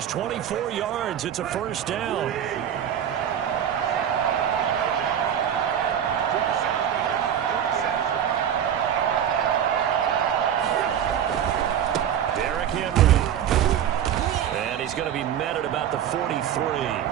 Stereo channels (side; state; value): left; quieter; 9.5 dB